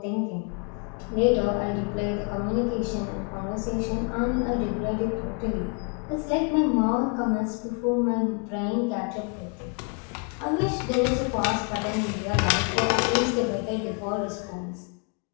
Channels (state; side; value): quieter; right; 36.4 dB